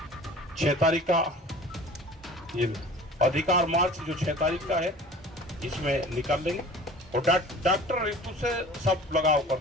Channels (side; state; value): both; normal; correlation 0.43